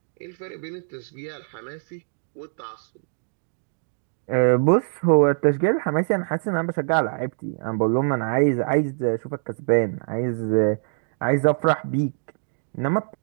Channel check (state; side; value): silent; left; digital silence